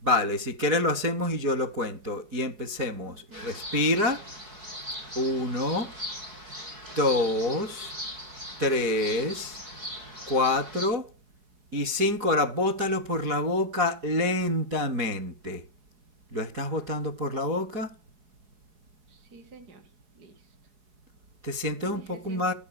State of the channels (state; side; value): late; left; 4.8 ms